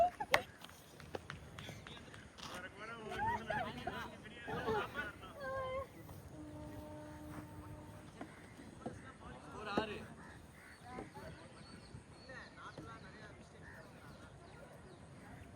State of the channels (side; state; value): both; identical; correlation 1.00